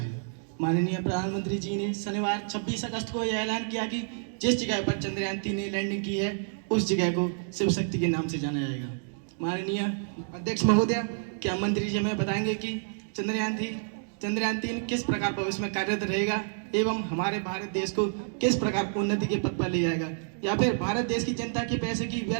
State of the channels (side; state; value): left; silent; digital silence